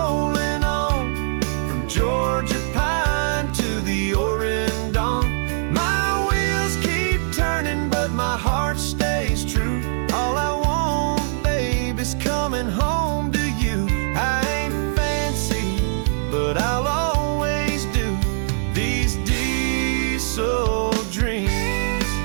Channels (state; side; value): silent; left; 58 dB below the other